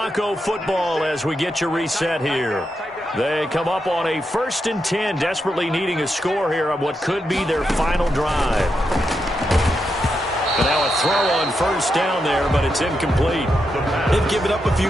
football as we get you reset here. They come up on a 1st and 10, desperately needing a score here on what could be their final drive. Now a throw on first down there, but it's incomplete. They've given up a few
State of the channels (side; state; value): both; normal; correlation 0.84